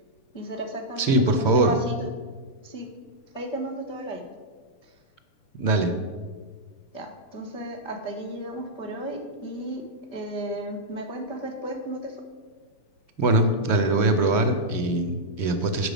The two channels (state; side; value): late; right; 6.8 ms